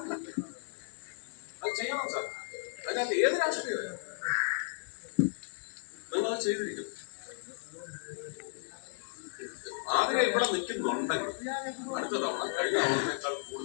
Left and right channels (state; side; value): silent; right; digital silence